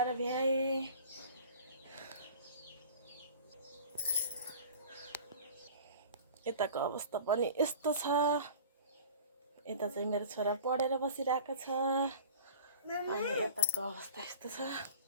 भ्याएँ। यताको अवस्था पनि यस्तो छ। यता चाहिँ मेरो छोरा पढेर बसिरहेको छ अनि यताको अवस्था यस्तो छ।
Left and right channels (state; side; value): inverted; both; correlation -0.42